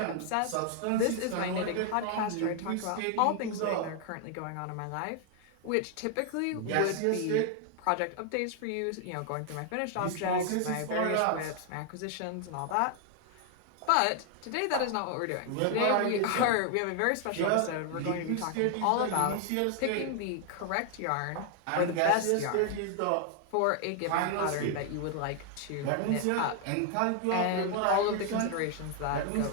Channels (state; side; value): different; both; correlation 0.00